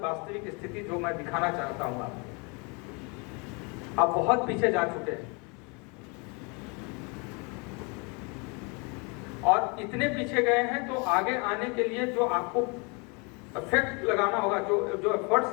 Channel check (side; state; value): right; quieter; 31.5 dB